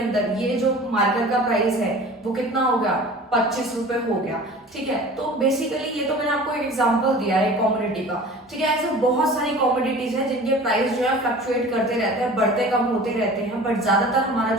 ये जो मार्कर का प्राइस है वो कितना हो गया, 25 रुपए हो गया। ठीक है, तो बेसिकली ये तो मैंने आपको एक एग्जांपल दिया है कमोडिटी का। ठीक है, ऐसे बहुत सारी कमोडिटीज हैं जिनके प्राइस जो है फ्लक्चुएट करते रहते हैं, बढ़ते कम होते रहते हैं, बट ज्यादातर हमारा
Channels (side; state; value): both; normal; correlation 0.41